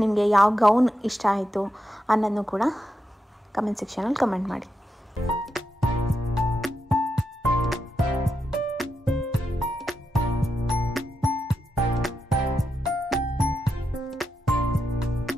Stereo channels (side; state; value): both; normal; correlation 0.86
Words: ನಿಮಗೆ, ಯಾವ ಗೌನ್ ಇಷ್ಟ ಆಯಿತು ಅನ್ನೋದನ್ನು ಕೂಡ ಕಮೆಂಟ್ ಸೆಕ್ಷನಲ್ಲಿ ಕಮೆಂಟ್ ಮಾಡಿ.